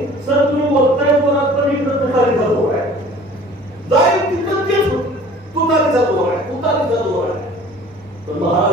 सर तुम्ही बोलताय जोरात पण इकडे तुतारी जातो आहे, जाईल तिकडे तेच तुतारी जातो आहे, तुतारी जातो आहे. तर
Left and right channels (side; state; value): both; normal; correlation 0.48